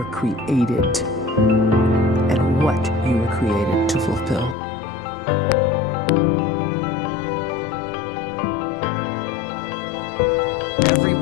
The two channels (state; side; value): drops out; right; at 4.5 s